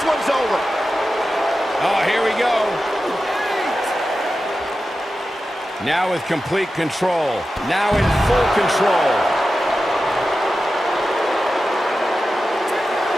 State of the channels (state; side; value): normal; both; correlation 0.92